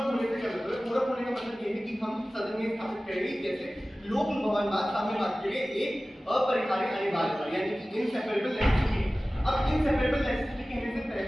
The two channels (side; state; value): both; normal; correlation 0.97